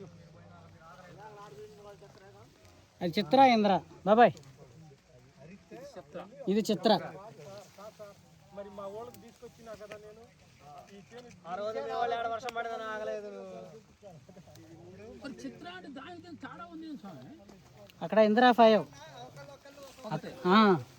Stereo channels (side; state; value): both; identical; correlation 1.00